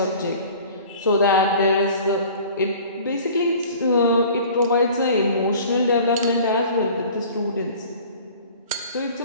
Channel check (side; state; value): both; inverted; correlation -0.46